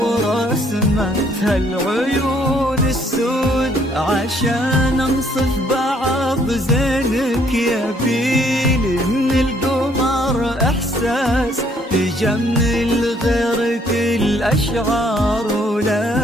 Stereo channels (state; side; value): normal; both; correlation 0.65